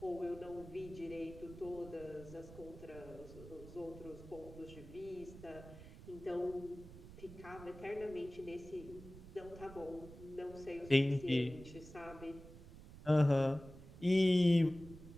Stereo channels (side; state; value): right; noise; rumble, 16 dB below the sound